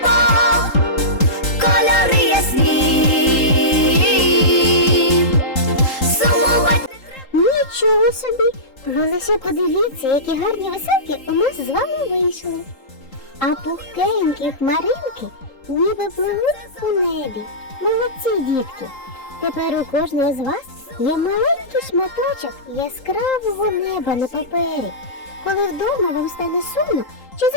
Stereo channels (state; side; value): late; right; 3.8 ms